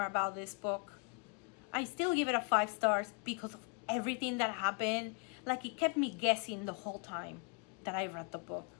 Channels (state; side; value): quieter; right; 36.8 dB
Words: about this book. I still give it a 5 stars because of everything that happened. It kept me guessing the whole time that I read the book.